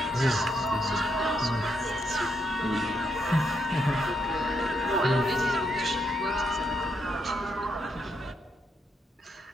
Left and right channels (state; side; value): normal; both; correlation 0.77